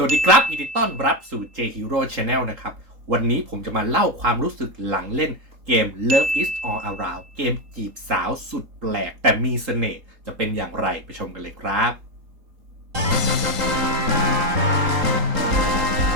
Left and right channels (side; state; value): left; late; 3.8 ms